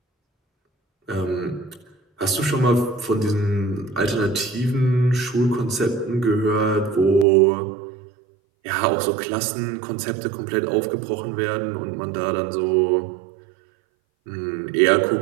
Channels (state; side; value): drops out; left; at 7.2 s